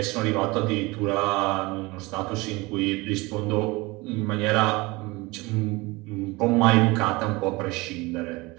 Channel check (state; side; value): quieter; left; 23.2 dB